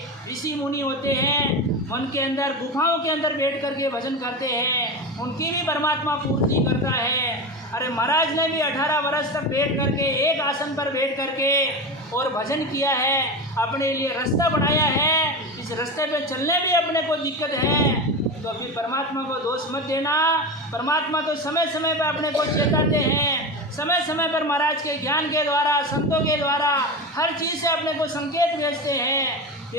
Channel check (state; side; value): normal; both; correlation 0.23